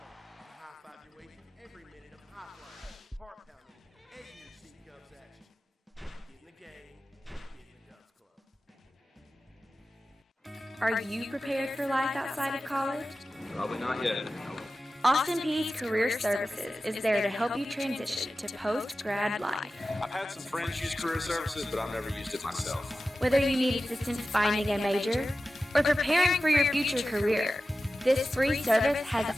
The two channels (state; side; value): normal; both; correlation 0.94